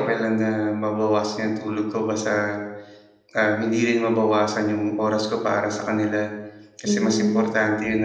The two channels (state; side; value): identical; both; correlation 1.00